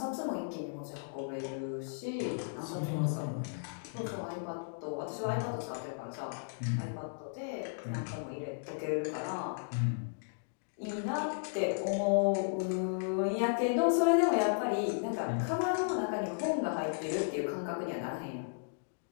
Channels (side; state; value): right; silent; digital silence